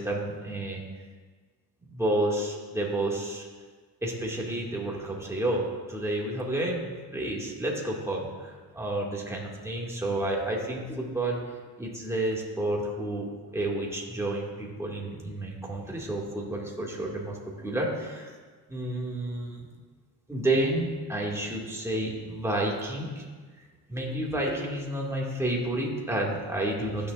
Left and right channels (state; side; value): normal; both; correlation 0.45